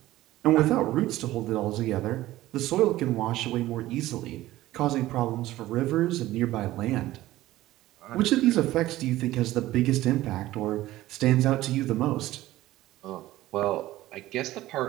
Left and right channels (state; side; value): quieter; left; 16.0 dB